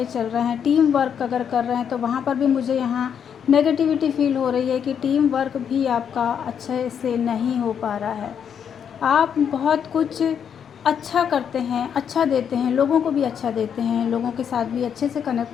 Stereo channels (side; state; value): right; quieter; 7.9 dB